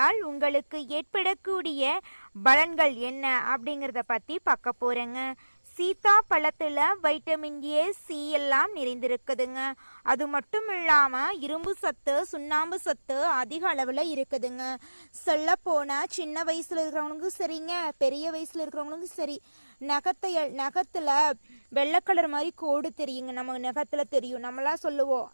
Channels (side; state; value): both; inverted; correlation -1.00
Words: உங்களுக்கு ஏற்படக்கூடிய பலன்கள் என்ன அப்படிங்கிறத பற்றி பார்க்க போகிறேங்க. சீத்தா பழத்தில் வைட்டமின் ஏ, சி எல்லாம் நிறைந்திருக்குதுங்க. அது மட்டும் இல்லாமல் இரும்பு சத்து, சுண்ணாம்பு சத்து அதிக அளவில் இருக்குதுங்க. சொல்ல போனால் சின்ன வயசில் இருக்கிறவங்களுக்கும் சரிங்க, பெரிய வயசில் இருக்கிறவங்களுக்கும் சரி, நகத்தில் வெள்ளை கலர் மாதிரி கோடு தெரியுங்க. நம்ம நகத்தில் தெரியும். நம்மளாம் சொல்லுவோம்,